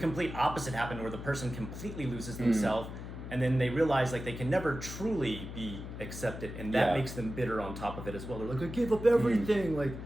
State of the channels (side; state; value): left; noise; hum, 9 dB below the sound